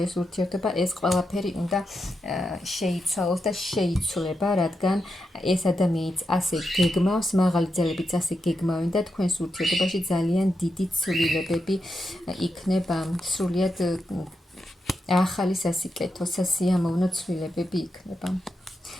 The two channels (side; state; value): both; normal; correlation 0.86